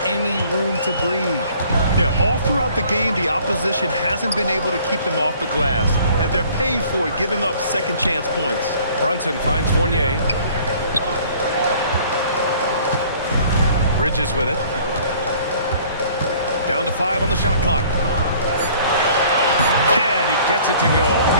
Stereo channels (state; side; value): inverted; both; correlation -0.54